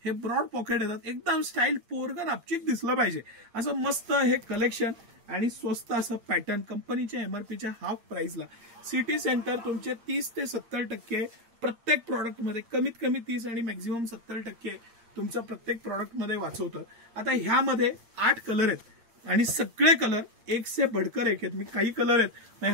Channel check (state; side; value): late; left; 8.7 ms